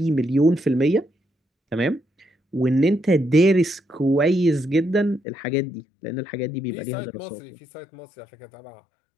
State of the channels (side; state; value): right; drops out; at 5.2 s